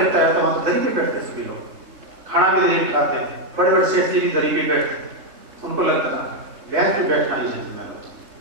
है, तो वहां दरी पे बैठते सभी लोग, खाना भी दरी पे खाते हैं, बड़े बड़े सेठ जी भी दरी पे बैठते, उनको लगता है बेंच पे बैठना ही जेंटलमैन।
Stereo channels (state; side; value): late; left; 3.7 ms